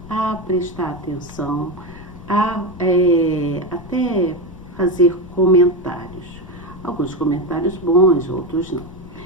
a prestar atenção, até fazer comentários. Alguns comentários bons, outros não.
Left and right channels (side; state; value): left; noise; rumble, 16 dB below the sound